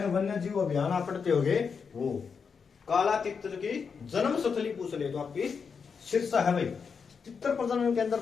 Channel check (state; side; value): quieter; right; 5.9 dB